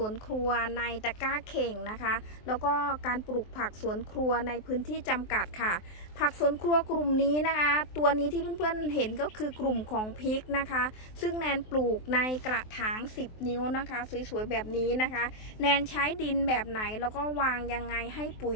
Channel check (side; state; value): right; late; 23 ms